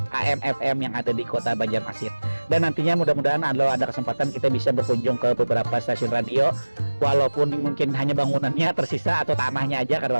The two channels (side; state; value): both; inverted; correlation -1.00